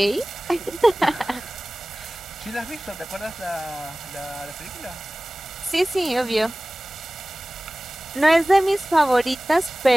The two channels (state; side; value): normal; both; correlation 0.98